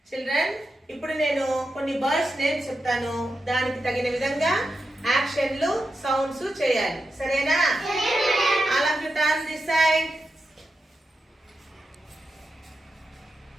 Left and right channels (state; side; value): normal; both; correlation 0.88